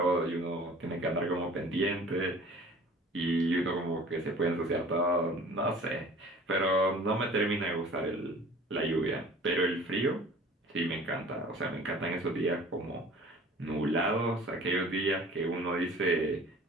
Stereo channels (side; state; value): both; normal; correlation 0.47